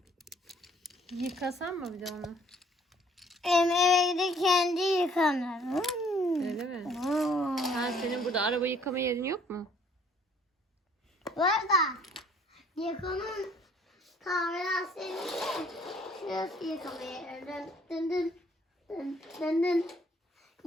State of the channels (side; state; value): both; normal; correlation 0.59